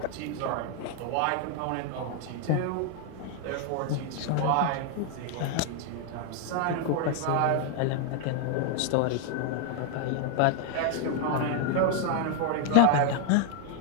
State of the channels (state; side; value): different; both; correlation 0.00